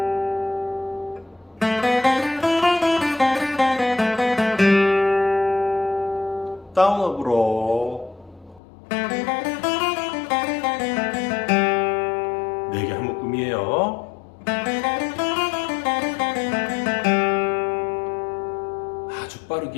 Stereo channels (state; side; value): drops out; right; at 8.6 s